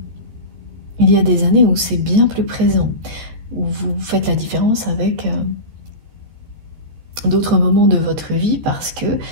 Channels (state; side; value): late; left; 13 ms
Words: Il y a des années où c'est bien plus présent, où vous faites la différence avec d'autres moments de votre vie parce que